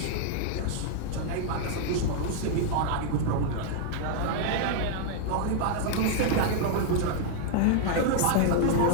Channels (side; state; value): both; different; correlation -0.01